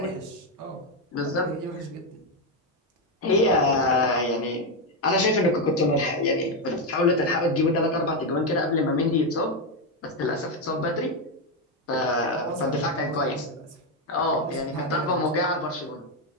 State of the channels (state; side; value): normal; both; correlation 0.06